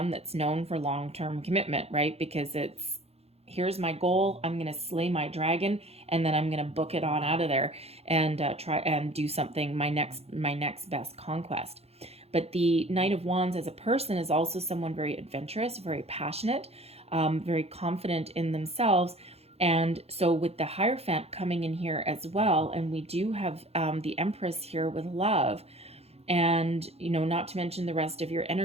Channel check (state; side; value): late; left; 0.29 ms